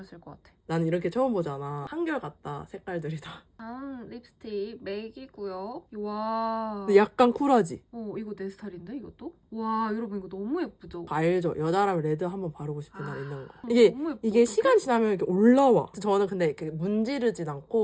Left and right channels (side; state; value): both; identical; correlation 1.00